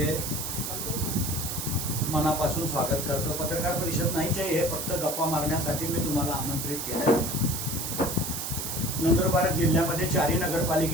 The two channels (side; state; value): right; noise; hiss, 4 dB below the sound